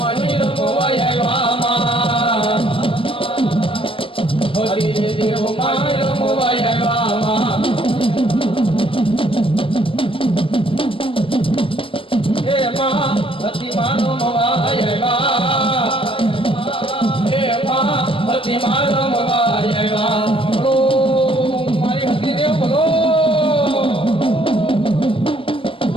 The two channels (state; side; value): late; right; 0.26 ms